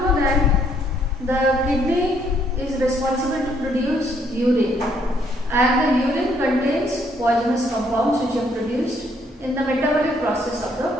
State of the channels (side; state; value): both; normal; correlation 0.69